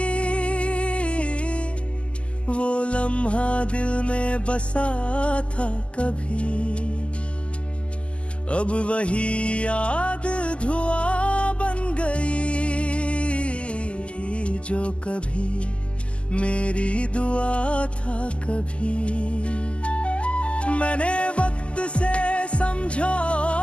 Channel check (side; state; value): right; late; 0.056 ms